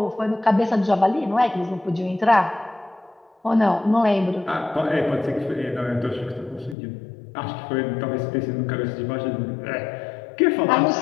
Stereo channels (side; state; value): right; drops out; at 6.8 s